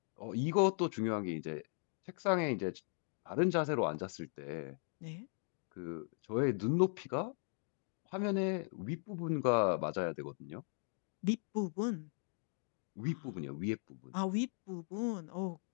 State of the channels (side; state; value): right; silent; 52 dB below the other